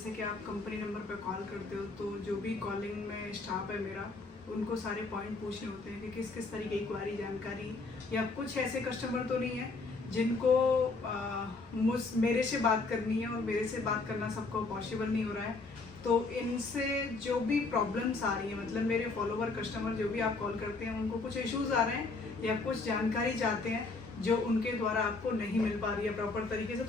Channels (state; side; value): quieter; right; 3.7 dB